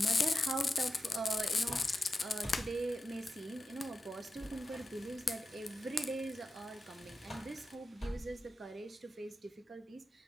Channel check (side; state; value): both; normal; correlation 0.90